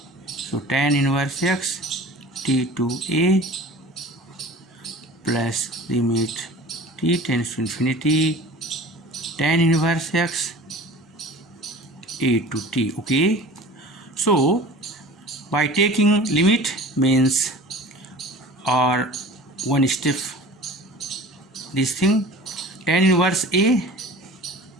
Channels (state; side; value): normal; both; correlation 0.41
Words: so tan inverse x t to a plus limit t tends to infinity tan inverse x a to t. Okay, so by taking limit means, or one step this thing, tan inverse a